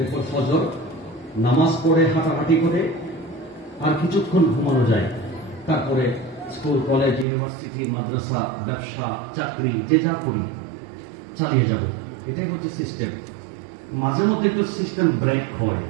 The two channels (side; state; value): left; drops out; at 7.2 s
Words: ফজর নামাজ পড়ে হাঁটাহাঁটি করে আর কিছুক্ষণ ঘুমানো যায়, তারপরে স্কুল, কলেজ, ইউনিভার্সিটি, মাদ্রাসা, ব্যবসা, চাকরি, যে যা করি চালিয়ে যাব। এটাই হচ্ছে সিস্টেম। মাঝে মধ্যে একটু সিস্টেম ব্রেক হয়,